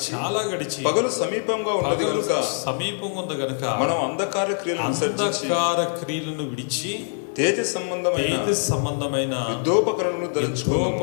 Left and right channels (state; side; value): silent; right; digital silence